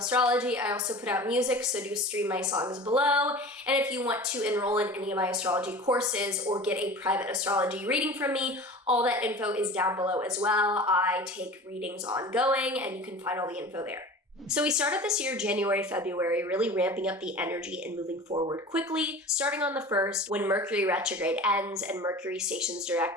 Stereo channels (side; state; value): both; normal; correlation 0.37